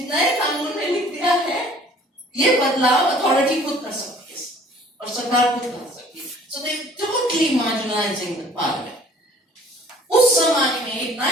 नए कानून में लिख दिया है ये बदलाव अथॉरिटी खुद कर सकती है और सरकार खुद कर सकती है. सो दे टोटली मार्जिनलाइजिंग द पार्लियामेंट. उस जमाने में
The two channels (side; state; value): both; normal; correlation 0.53